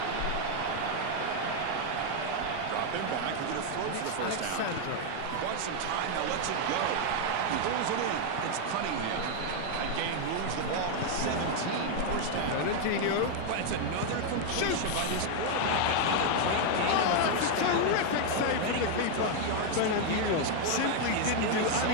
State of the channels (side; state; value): both; different; correlation 0.00